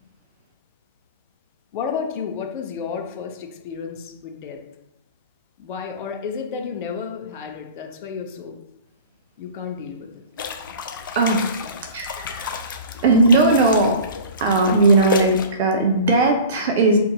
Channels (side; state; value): both; inverted; correlation -0.38